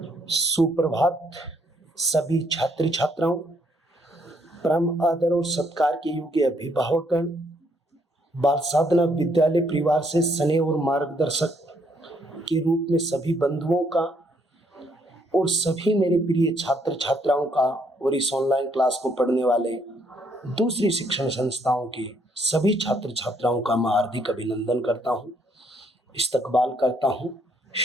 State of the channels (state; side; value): normal; both; correlation 0.70